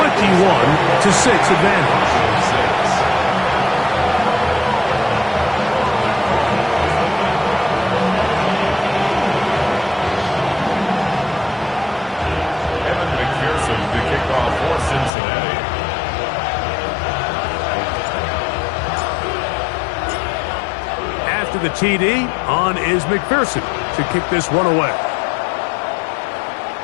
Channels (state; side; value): drops out; right; at 15.1 s